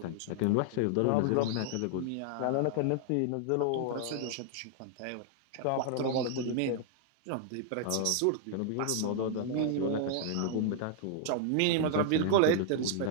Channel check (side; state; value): both; different; correlation 0.00